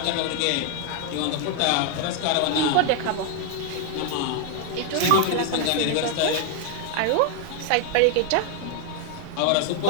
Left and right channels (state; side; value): different; both; correlation 0.00